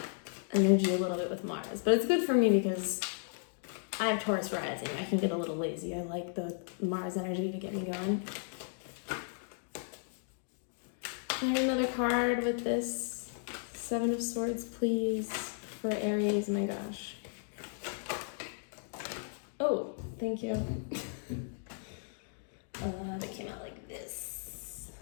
energy a little bit with Mars, but it's good for me because I have Taurus rising. I can get a little lazy. I like the Mars energy to get me going. Can I get another card with this Seven of Swords, please, for Aries? My gosh. Oh, thank you. That came out like this.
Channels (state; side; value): silent; right; digital silence